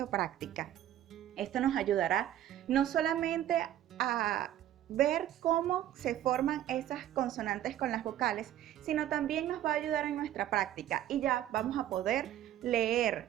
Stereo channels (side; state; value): left; quieter; 12.1 dB